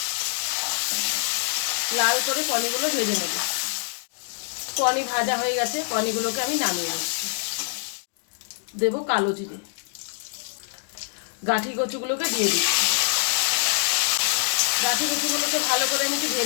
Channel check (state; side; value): silent; right; digital silence